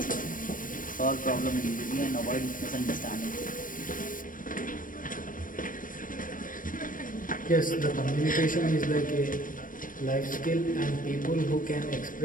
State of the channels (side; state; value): right; late; 0.40 ms